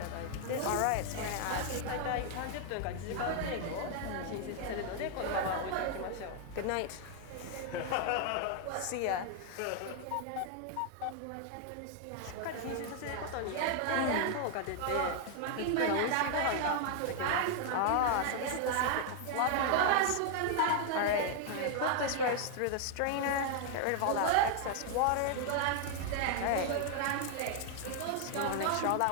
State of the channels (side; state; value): both; different; correlation 0.00